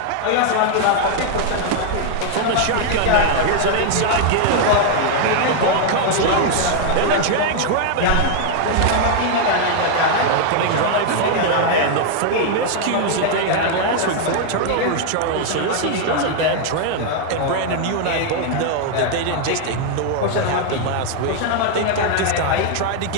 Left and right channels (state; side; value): different; both; correlation 0.00